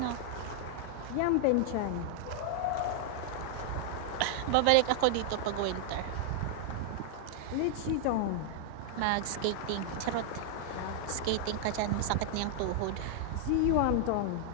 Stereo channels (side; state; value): both; different; correlation -0.01